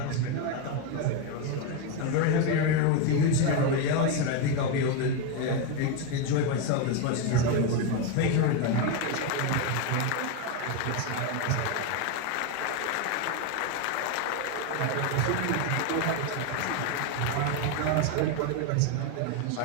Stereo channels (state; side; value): different; both; correlation 0.02